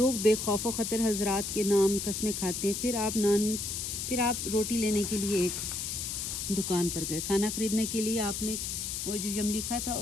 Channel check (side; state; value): left; noise; hiss, 3 dB below the sound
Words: بے خوف و خطر حضرات کے نام قسمیں کھاتے ہیں۔ پھر آپ روٹی لینے کے لیے ایک دکان پر گئے، کھانا خریدنے کے لیے آپ نے وہ جو یملیکا تھا